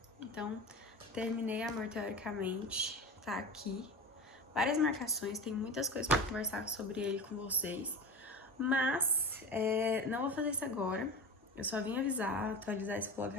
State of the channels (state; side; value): normal; both; correlation 0.28